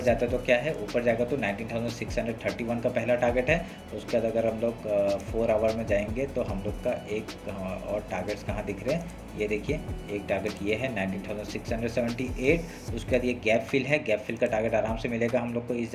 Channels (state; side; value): identical; both; correlation 1.00